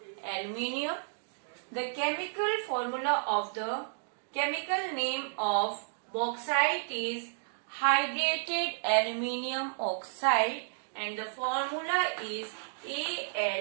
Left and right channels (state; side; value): silent; left; digital silence